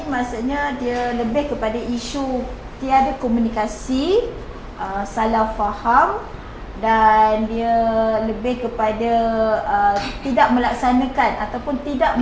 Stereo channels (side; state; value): both; identical; correlation 1.00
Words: maksudnya dia lebih kepada isu tiada komunikasi, salah faham, dan dia lebih kepada tidak melaksanakan ataupun tidak